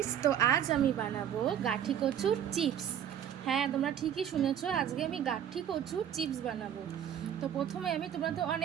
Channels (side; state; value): left; quieter; 9.6 dB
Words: তো আজ আমি বানাবো গাঠি কচুর চিপস। হ্যাঁ, তোমরা ঠিকই শুনেছো, আজকে আমি গাঠি কচুর চিপস বানাবো। তো প্রথমে তোমরা তো